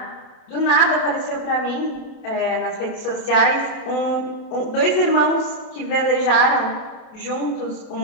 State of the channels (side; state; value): right; late; 28 ms